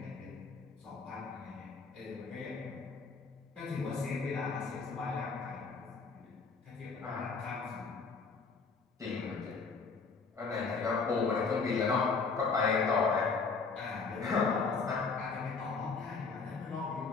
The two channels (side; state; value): right; quieter; 4.7 dB